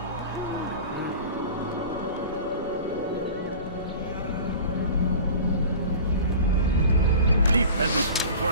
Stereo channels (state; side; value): inverted; both; correlation -0.38